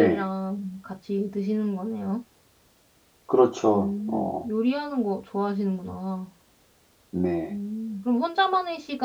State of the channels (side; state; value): both; identical; correlation 1.00